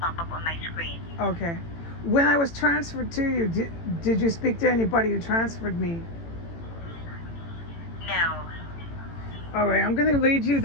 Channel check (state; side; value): late; right; 18 ms